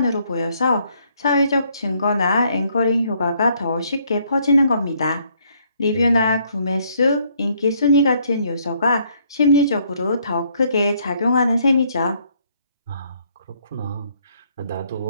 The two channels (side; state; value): both; inverted; correlation -0.68